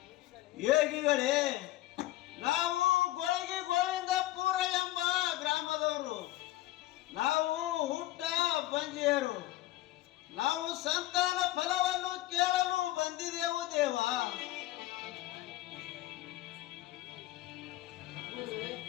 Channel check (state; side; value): quieter; right; 16.2 dB